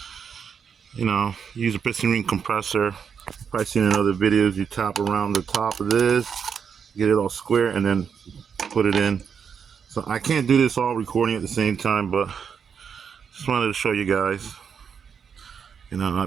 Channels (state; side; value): quieter; left; 6.9 dB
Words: You know, use a piston ring compressor. Probably seen in other videos. You tap around the top of this, get it all square, and then put it in. So I can't do this all recording at the same time, but just wanted to show you guys. You know, I